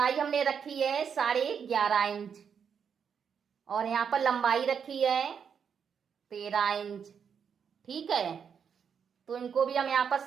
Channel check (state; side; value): quieter; left; 7.1 dB